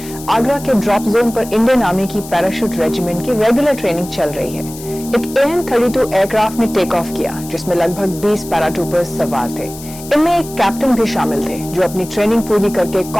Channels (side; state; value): left; noise; hiss, 15 dB below the sound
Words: आगरा के ड्रॉप जोन पर इंडियन आर्मी की पैराशूट रेजिमेंट की रेगुलर ट्रेनिंग चल रही है। एक AN-32 एयरक्राफ्ट ने टेक ऑफ किया, जिसमें लगभग 20 पैराट्रूपर्स सवार थे। इनमें एक कैप्टन भी शामिल थे, जो अपनी ट्रेनिंग पूरी करके